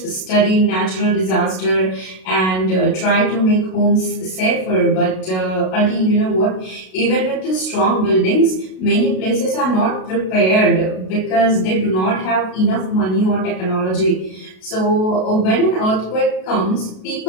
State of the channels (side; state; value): right; late; 32 ms